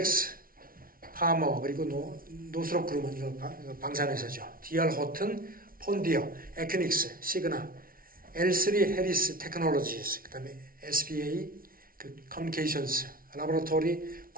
파머, 그리고 노스롭 그룹은 이거 방산회사죠. DR 호튼, 폰디어, 에큐닉스, 시그나, L3 해리스 테크놀로지스, 그 다음에 SBA, 커뮤니케이션스, 라보라토리,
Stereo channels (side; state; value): left; late; 0.42 ms